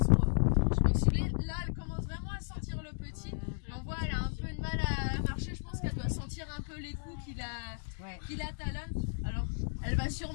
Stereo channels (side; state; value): right; silent; digital silence